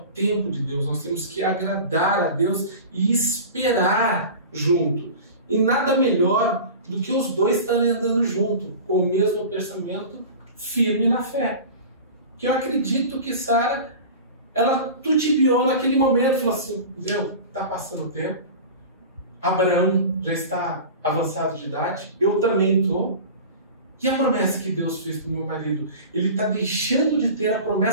de Deus. Nós temos que agradar a Deus e esperar junto. E nada melhor do que os dois estarem andando junto, com o mesmo pensamento, firme na fé. Que eu acredito que Sara, ela tutibiou naquele momento, falou assim: meu, está passando o tempo, Abraão já está avançado de idade, eu também estou. E a promessa que Deus fez para o meu marido? Ele está deixando de ter a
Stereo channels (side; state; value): both; inverted; correlation -0.35